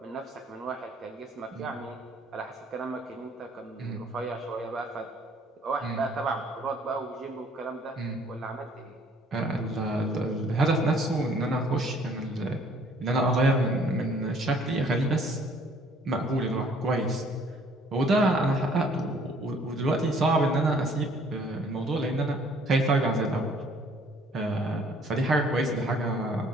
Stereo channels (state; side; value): normal; both; correlation 0.59